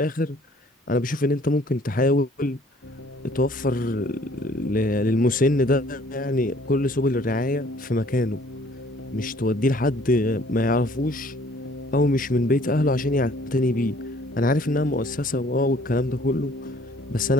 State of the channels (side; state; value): both; normal; correlation 0.57